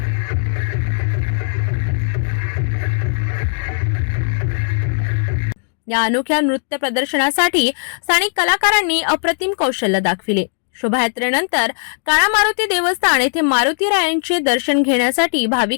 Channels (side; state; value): right; silent; 67 dB below the other